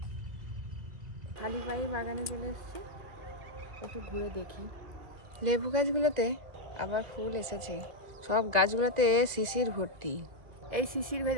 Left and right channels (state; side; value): late; left; 2.0 ms